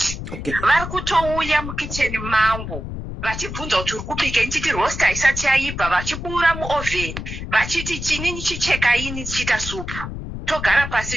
Okay. Vari kutouya mukicheni mangu vachibvunza kuti uri kubika, ndichiti rosta isati yaibva, vachibura muovheni vachiti chini chicheka ini chiita supu. Togara pasi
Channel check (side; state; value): left; noise; rumble, 7 dB below the sound